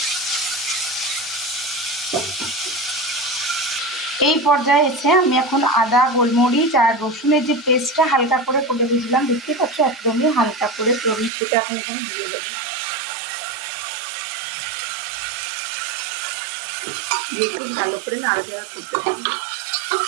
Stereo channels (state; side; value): drops out; left; at 11.3 s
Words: এই পর্যায়ে এসে আমি এখন আদা, গোলমরিচ আর রসুনের যে পেস্টটা হালকা করে দিয়েছিলাম, দেখতে পাচ্ছ একদমই হালকা করে, তো আমি সেটা এখন এখানে দিয়ে দেবো। দিয়ে একটু ভালো করে নাড়াচাড়া করতে থাকবো।